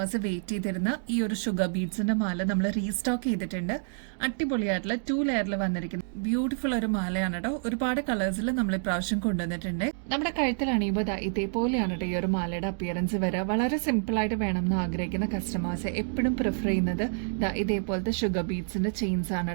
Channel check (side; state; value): left; silent; digital silence